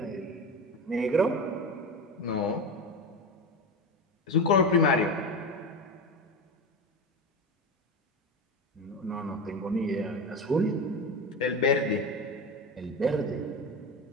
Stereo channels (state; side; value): normal; both; correlation 0.22